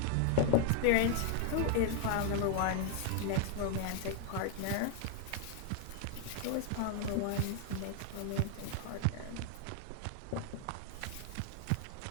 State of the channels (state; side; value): different; both; correlation 0.00